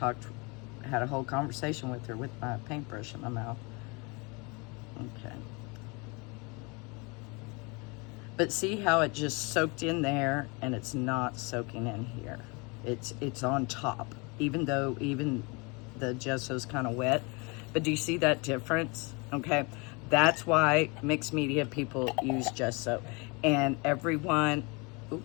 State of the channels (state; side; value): quieter; right; 29.2 dB